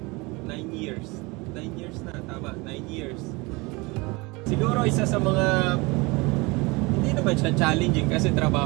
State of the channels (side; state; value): left; quieter; 25.2 dB